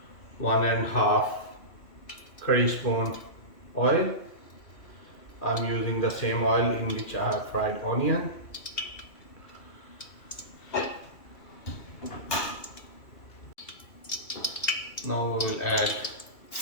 1.5 curry spoon oil. I'm using the same oil in which I have fried onion. Now we will add.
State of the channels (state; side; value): late; right; 2.6 ms